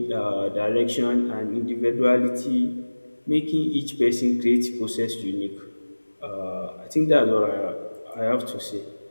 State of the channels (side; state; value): both; inverted; correlation -1.00